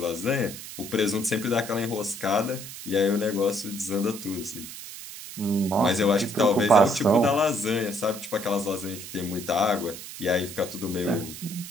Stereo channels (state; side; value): noise; right; hiss, 12 dB below the sound